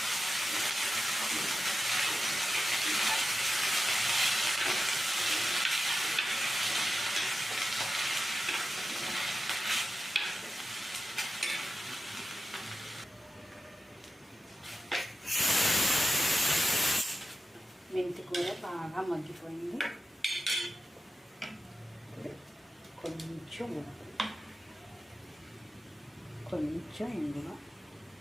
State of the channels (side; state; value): both; normal; correlation 0.92